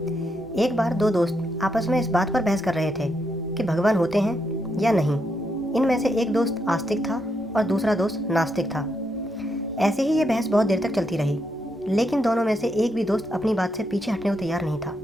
एक बार दो दोस्त आपस में इस बात पर बहस कर रहे थे कि भगवान होते हैं या नहीं। इनमें से एक दोस्त आस्तिक था और दूसरा दोस्त नास्तिक था। ऐसे ही ये बहस बहुत देर तक चलती रही, लेकिन दोनों में से एक भी दोस्त अपनी बात से पीछे हटने को तैयार नहीं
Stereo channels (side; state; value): both; normal; correlation 0.80